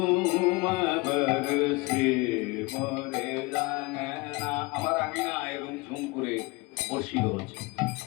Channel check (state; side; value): quieter; right; 24.8 dB